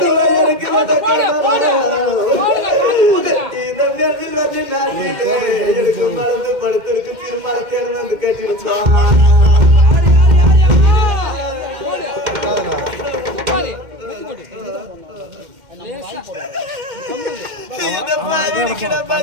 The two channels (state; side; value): late; left; 2.1 ms